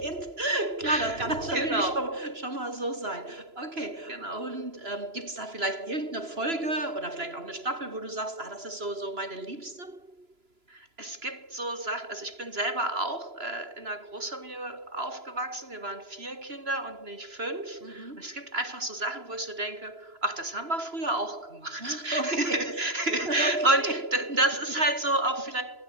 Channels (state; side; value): late; left; 3.0 ms